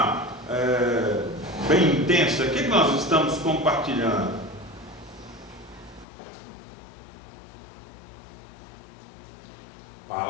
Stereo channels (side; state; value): right; drops out; at 6.1 s